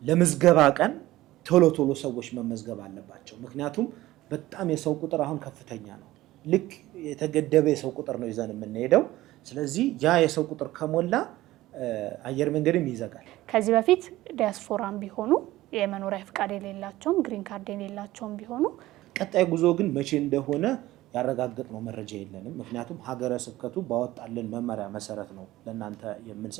ለምዝገባ ቀን ቶሎ ቶሎ ሰዎች መመዝገብ አለባቸው። ምክንያቱም በጣም የሰው ቁጥር አሁን ከፍተኛ ነው። ልክ የተገደበ የሰው ቁጥር ነው ይዘን የምንሄደው። ስለዚህ ያ የሰው ቁጥር ከሞላ አየር መንገድም ይዘጋል። ከዚህ በፊት ዲያስፖራም ቢሆኑ የመኖሪያ ፍቃድ የሌላቸውም ግሪን ካርድ የሌላቸውም ቢሆኑ ቀጣይ ጉዞ ግን መቼ እንደሆነ ያረጋግጥነው መረጃ የለንም። ምክንያቱም ሀገረ ስብከቱ ባወጣልን መመሪያ መሰረት ነው ለእናንተ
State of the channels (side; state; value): left; quieter; 16.7 dB